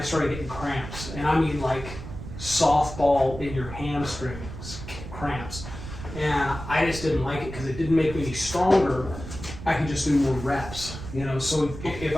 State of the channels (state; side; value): noise; right; rumble, 10 dB below the sound